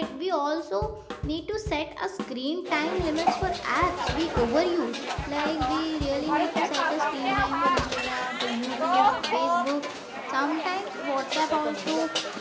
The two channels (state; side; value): identical; both; correlation 1.00